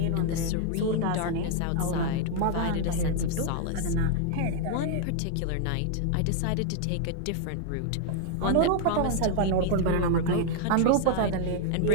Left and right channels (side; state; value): both; different; correlation 0.00